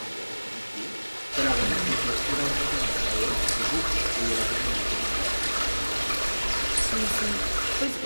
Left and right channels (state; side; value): inverted; both; correlation -1.00